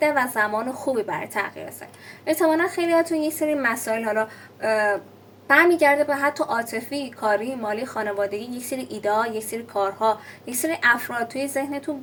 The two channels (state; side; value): identical; both; correlation 1.00